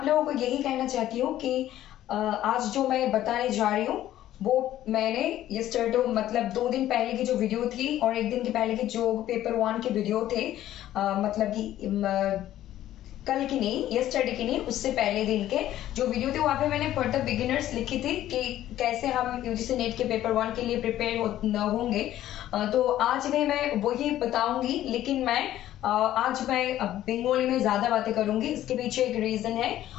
लोगों को यही कहना चाहती हूँ कि आज जो मैं बताने जा रही हूँ वो मैंने यस्टरडे मतलब 2 दिन पहले की जो वीडियो थी और 1 दिन के पहले की जो पेपर 1 के वीडियो थे, मतलब कि कल की नहीं, यस्टरडे की नहीं, उससे पहले दिन के जो वीडियो थे वहां पे मैंने फॉर द बिगिनर्स लिखी थी कि कैसे हम यूजीसी नेट के पेपर 1 के लिए प्रिपेयर होंगे। तो आज भी मैं वही बताऊंगी, लेकिन मैं आज मैं बंगाली में ज्यादा बातें करूंगी। इसके पीछे एक रीजन है,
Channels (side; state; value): right; quieter; 13.1 dB